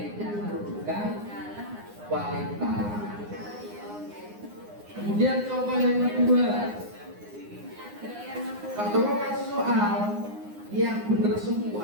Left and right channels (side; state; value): left; late; 9.7 ms